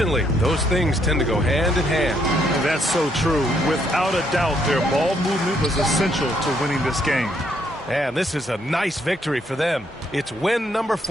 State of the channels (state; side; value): normal; both; correlation 0.72